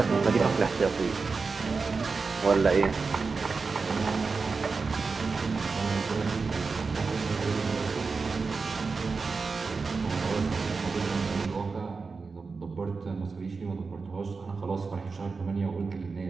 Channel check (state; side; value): quieter; left; 4.5 dB